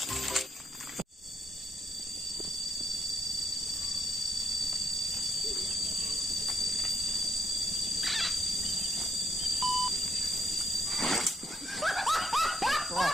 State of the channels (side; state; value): both; normal; correlation 0.75